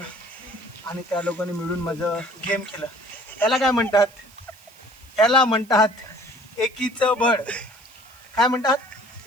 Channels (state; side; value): noise; right; hiss, 26 dB below the sound